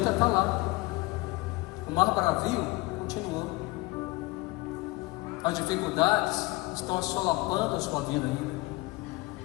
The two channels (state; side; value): quieter; right; 22.2 dB